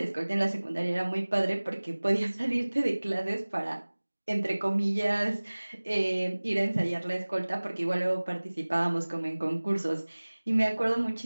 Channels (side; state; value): both; inverted; correlation -1.00